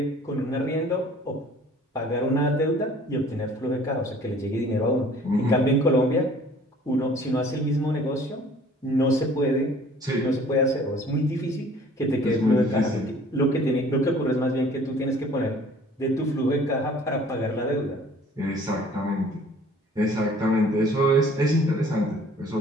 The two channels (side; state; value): both; normal; correlation 0.52